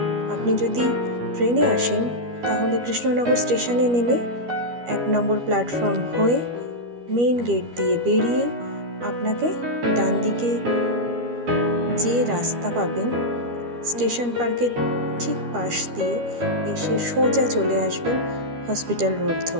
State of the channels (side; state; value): left; late; 12 ms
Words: আপনি যদি ট্রেনে আসেন তাহলে কৃষ্ণনগর স্টেশনে নেমে 1 নম্বর প্ল্যাটফর্ম হয়ে মেইন গেট দিয়ে বেরিয়ে আপনাকে ডান দিকে যে রাস্তা পাবেন স্টেশন পার্কের ঠিক পাশ দিয়ে এসে সোজা চলে আসবেন হসপিটাল রোড